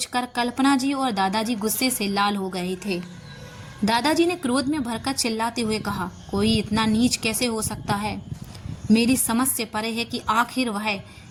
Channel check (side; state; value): both; identical; correlation 1.00